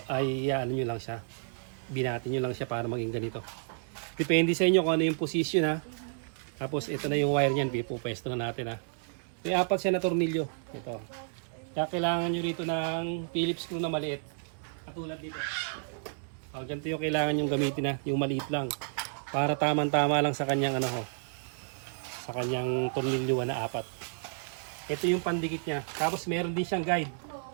nyo lang siya. Binatin nyo lang siya para maging ganito. Depende sa inyo kung ano yung position ha. Tapos ito na yung wire niyan, pupwesto na natin ha. May 4 siya na tornilyo. Ito. Kaya kailangan nyo rito ng Phillips screw na maliit. Katulad dito. Ganito yung kailangan yung gamitin na, yung maliit lang. Para tamang-tama lang sa kanyang ano ho. Sa kanyang tornilyo na 4. Ito yung pandikit niya. Tapos meron din siyang guide.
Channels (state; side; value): silent; left; digital silence